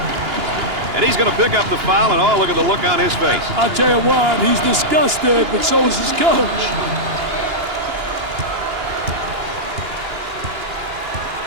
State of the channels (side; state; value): left; late; 2.9 ms